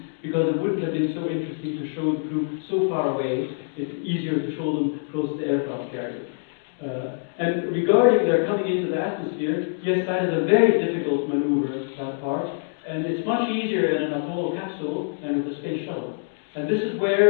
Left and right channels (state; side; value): silent; right; digital silence